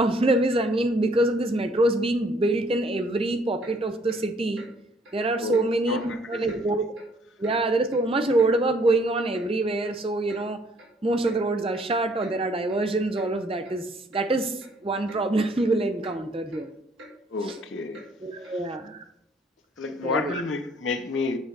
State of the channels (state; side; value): normal; both; correlation 0.63